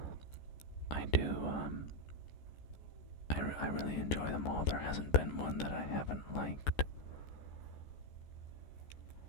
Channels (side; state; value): right; late; 14 ms